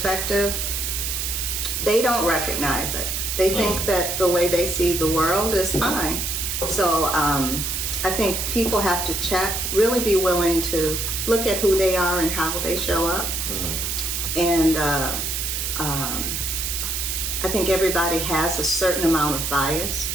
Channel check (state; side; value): noise; right; hiss, 2 dB below the sound